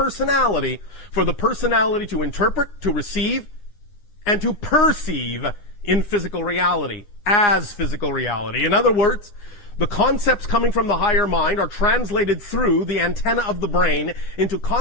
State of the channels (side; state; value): right; late; 10 ms